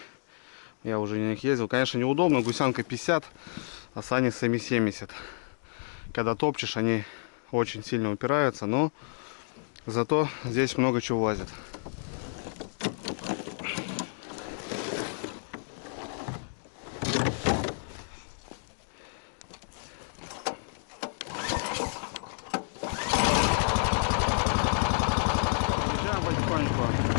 Я уже на них ездил. Конечно, неудобно. Гусянка 50, а сани сами 70. Когда топчешь, они очень сильно упираются, но зато здесь много чего влазит. Приезжаем потихоньку.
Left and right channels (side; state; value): right; silent; digital silence